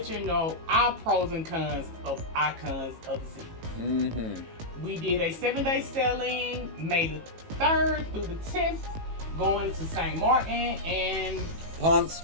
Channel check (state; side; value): late; left; 18 ms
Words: you know our pros and cons of Icons of the Sea. Mm-hmm. We did a 7-day sailing, May the 3rd through the 10th, going to St. Martin and Ponce,